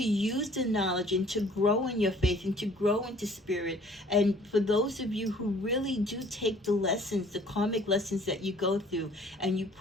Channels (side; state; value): both; normal; correlation 0.54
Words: use the knowledge and to grow in your faith and to grow into spirit, and for those of you who really do take the lessons, the karmic lessons that you go through, and you